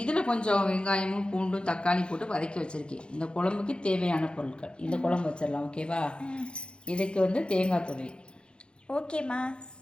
கொஞ்சம் வெங்காயமும் பூண்டும் தக்காளி போட்டு வதக்கி வச்சுருக்கேன். இந்த குழம்புக்கு தேவையான பொருட்கள் இந்த குழம்பு வச்சிடலாம். ஓகேவா? இதுக்கு வந்து தேங்காய் துவையல். ஓகேம்மா.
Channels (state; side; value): late; right; 0.054 ms